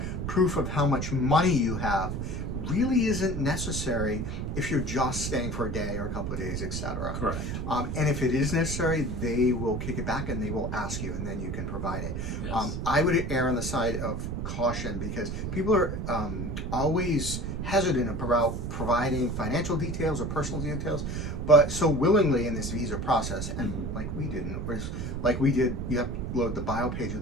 proof of how much money you have really isn't necessary if you're just staying for a day or a couple of days, etc. Correct. And if it is necessary, they will kick it back and they will ask you, and then you can provide it. I would err on the side of caution because people are always hesitant about providing financial details or personal details, but so willingly in this visa process, and like we didn't, like we did, you have to upload the bio page of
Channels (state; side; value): noise; right; rumble, 3 dB below the sound